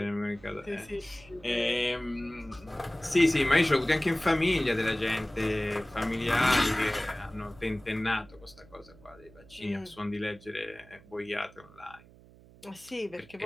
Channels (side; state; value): right; noise; hum, 24 dB below the sound